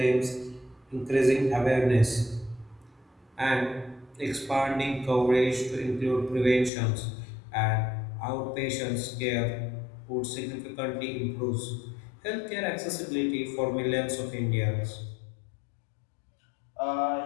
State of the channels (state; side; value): drops out; right; at 6.7 s